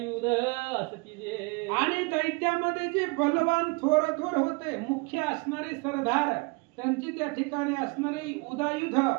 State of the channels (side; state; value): left; quieter; 28.3 dB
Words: असती जे। आणि दैत्यामध्ये जे बलवान थोर थोर होते मुख्य असणारे सरदार, त्यांची त्या ठिकाणी असणारी उदायुध